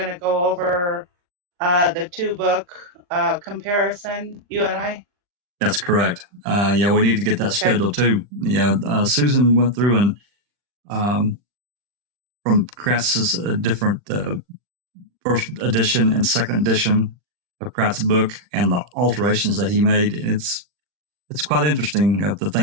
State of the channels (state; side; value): late; left; 40 ms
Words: to go over the 2-book comparison. You and I. That's correct. Yeah, we need to get that scheduled too. Yeah, Susan went through and from Kratz's different first edition and second edition of Kratz's book and the alterations that he made. It's quite interesting of the